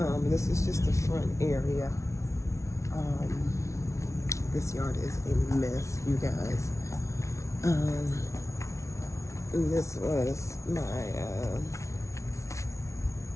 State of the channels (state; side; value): late; right; 0.14 ms